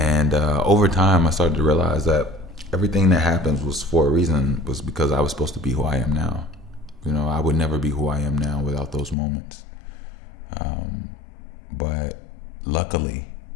over time, I started to realize that everything that happens was for a reason, was because I was supposed to be who I am now. I would never be who I am now without those moments. But luckily,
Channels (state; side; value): drops out; right; at 9.2 s